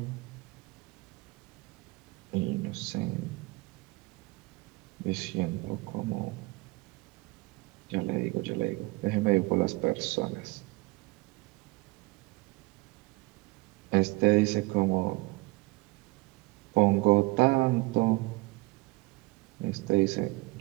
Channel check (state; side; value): quieter; left; 23.9 dB